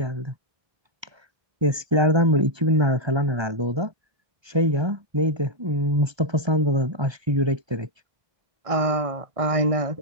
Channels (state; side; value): late; left; 1.3 ms